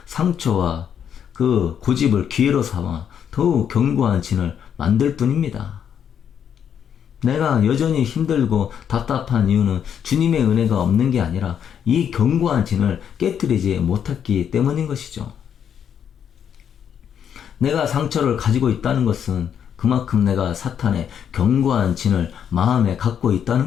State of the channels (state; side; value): quieter; right; 8.5 dB